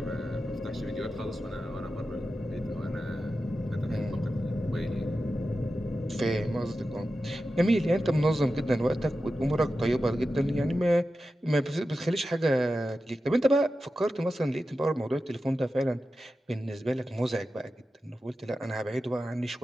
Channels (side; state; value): both; normal; correlation 0.92